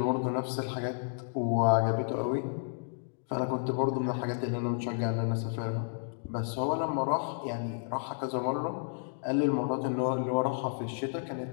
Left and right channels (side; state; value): right; silent; digital silence